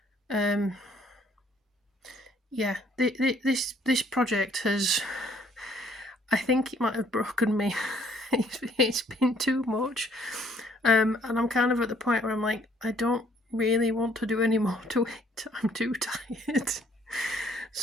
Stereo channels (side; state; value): both; normal; correlation 0.63